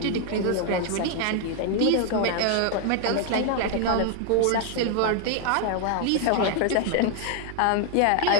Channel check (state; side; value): different; both; correlation 0.00